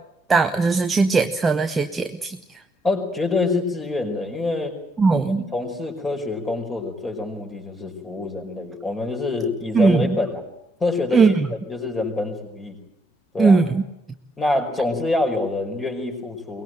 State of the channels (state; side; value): normal; both; correlation 0.77